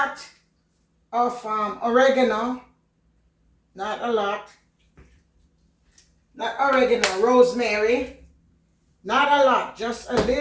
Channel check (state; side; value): identical; both; correlation 1.00